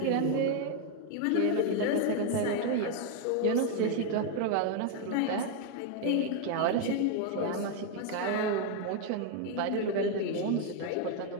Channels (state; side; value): different; both; correlation 0.01